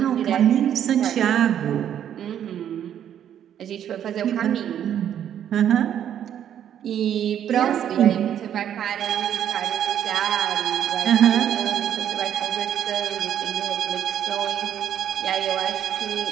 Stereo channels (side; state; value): left; quieter; 9.9 dB